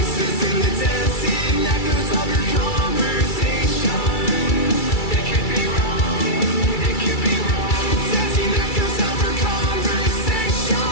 in the dancing echoes of your conversation. It could be wrong, it could be wrong. Dancing echoes of her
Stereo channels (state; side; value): late; right; 2.3 ms